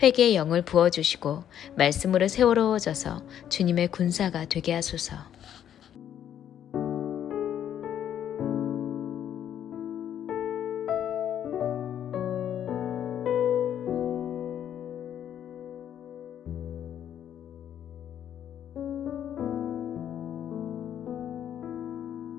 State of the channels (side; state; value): right; quieter; 10.0 dB